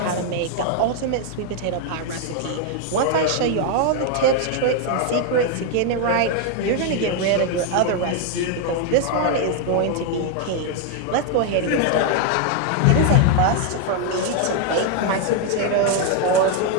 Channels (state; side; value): different; both; correlation 0.01